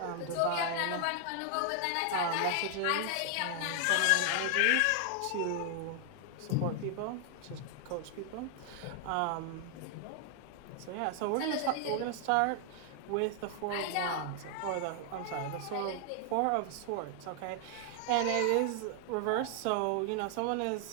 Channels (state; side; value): different; both; correlation 0.00